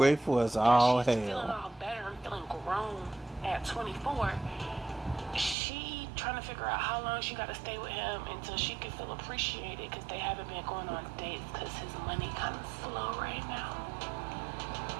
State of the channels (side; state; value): left; drops out; at 5.6 s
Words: as all she's feeling hell. all better and feeling grown at 24. She trying to figure out how long she got to stay with him until she can feel appreciated because they haven't been going on dates because his money kind of slow right now.